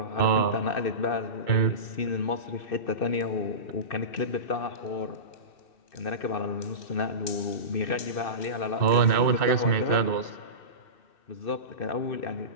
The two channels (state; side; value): late; right; 2.6 ms